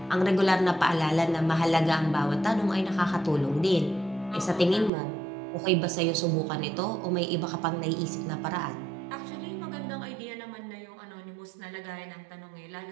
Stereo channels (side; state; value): left; drops out; at 4.9 s